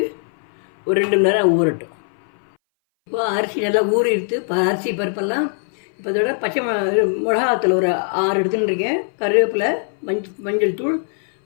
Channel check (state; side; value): silent; right; 60 dB below the other